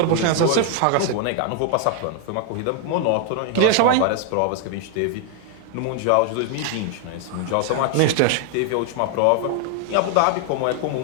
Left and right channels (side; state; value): both; different; correlation 0.00